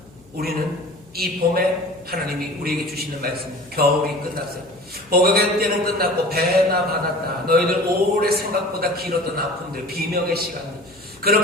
우리는 이 봄에 하나님이 우리에게 주시는 말씀, 겨울이 끝났어요. 복역의 때는 끝났고 배나 받았다. 너희들 오래 생각보다 길었던 아픔들, 비명의 시간들,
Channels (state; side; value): noise; left; hum, 27 dB below the sound